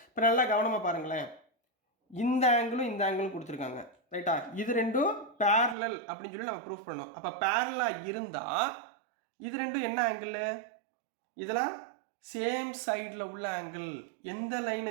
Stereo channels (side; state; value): left; drops out; at 5.8 s